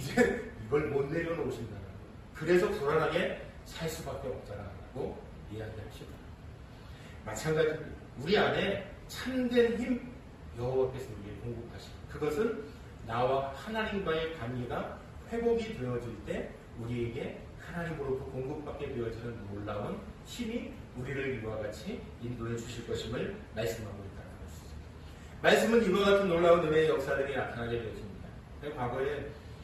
이걸 못 내려놓으신다는 거. 그래서 불안하게 살 수밖에 없다라고 이야기하시더라고요. 마찬가지로 우리 안에 참된 힘 여호와께서 우리에게 공급하십니다. 그것은 나와 하나님과의 관계가 회복이 되어질 때 우리에게 하나님으로부터 공급받게 되어지는 놀라운 힘이 우리를 이와 같이 인도해 주실 것임을 말씀하고 있다는 것이죠. 말씀은 이와 같은 놀라운 은혜의 역사들이 나타나게 되어집니다. 과거에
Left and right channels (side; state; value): both; identical; correlation 1.00